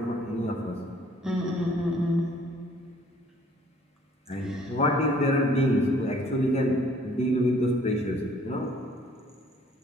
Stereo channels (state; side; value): normal; both; correlation 0.59